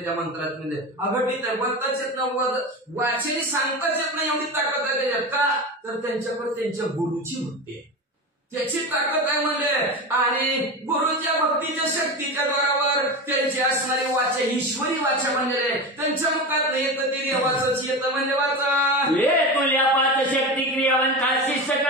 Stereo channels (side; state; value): both; normal; correlation 0.24